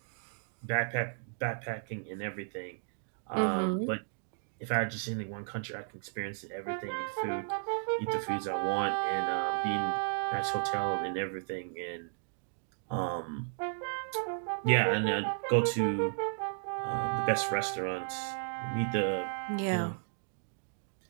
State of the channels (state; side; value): silent; left; digital silence